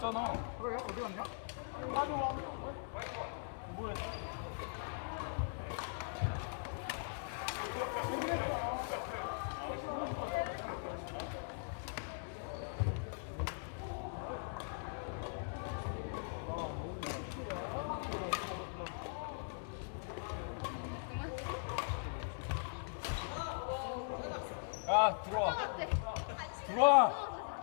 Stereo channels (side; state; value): right; silent; 51 dB below the other